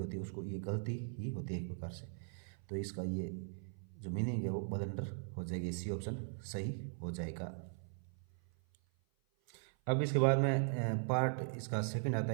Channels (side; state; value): left; silent; 51 dB below the other